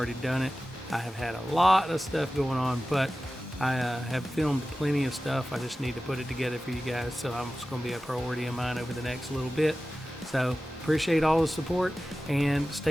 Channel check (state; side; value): normal; both; correlation 0.95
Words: done it. I have had a lot of stuff going on, but I have filmed plenty of stuff. I just need to put it together for you guys, so it's going to be a priority of mine over the next little bit. So appreciate all the support, and